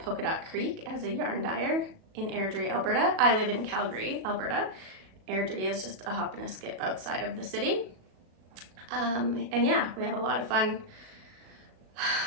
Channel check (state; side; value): late; left; 37 ms